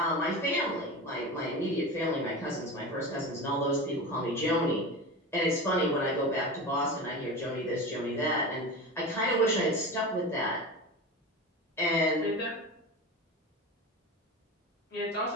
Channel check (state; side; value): normal; both; correlation 0.27